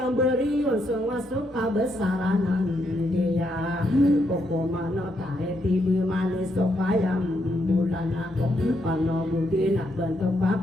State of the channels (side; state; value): both; normal; correlation 0.78